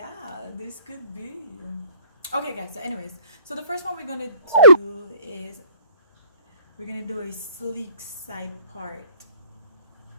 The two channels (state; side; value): inverted; both; correlation -0.57